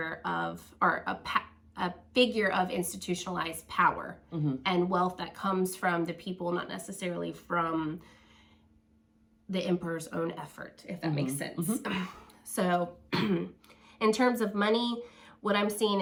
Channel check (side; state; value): both; identical; correlation 1.00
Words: of, or a figure of institutionalized power and wealth that comes from the people, not necessarily from the emperor's own effort, if that makes sense. So in terms of money, what I'm seeing